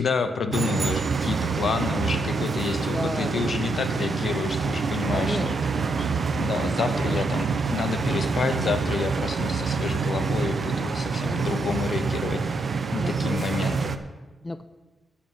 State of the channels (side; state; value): both; normal; correlation 0.77